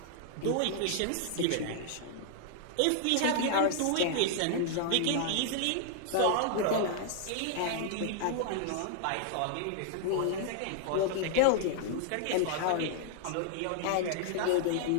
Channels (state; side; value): different; both; correlation -0.01